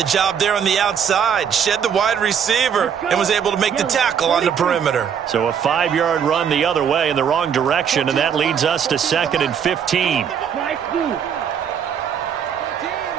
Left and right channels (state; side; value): quieter; left; 7.8 dB